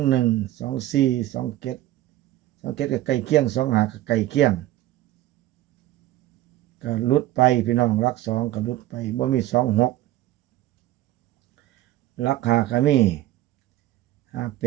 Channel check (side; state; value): left; quieter; 14.8 dB